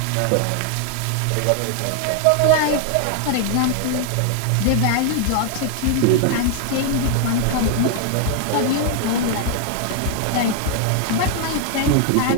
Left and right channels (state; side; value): different; both; correlation 0.00